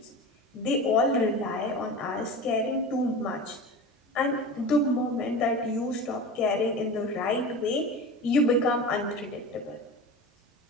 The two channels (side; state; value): both; normal; correlation 0.31